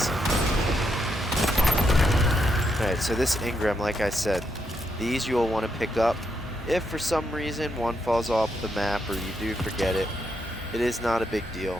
Alright, so this engram, like I said, these you will want to pick up. If for some reason one falls off the map or you do forget it, it is not a big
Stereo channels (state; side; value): normal; both; correlation 0.80